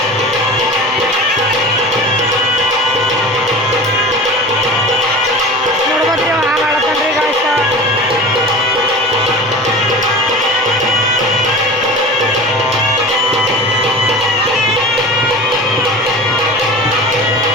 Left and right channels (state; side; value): normal; both; correlation 0.34